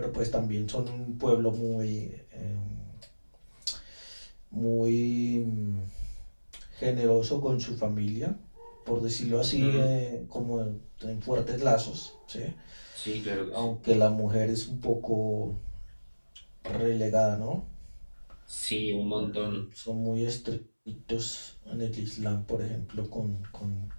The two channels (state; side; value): inverted; both; correlation -1.00